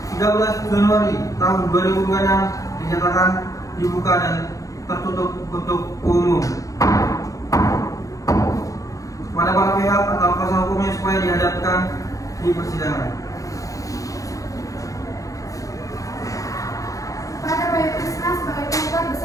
13 Januari tahun 2026 dinyatakan dibuka dan tertutup untuk umum. Kepada para pihak atau kuasa hukumnya supaya dihadapkan di persidangan. Pada Bayu Krisna sebagai penggugat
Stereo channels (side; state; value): right; late; 0.16 ms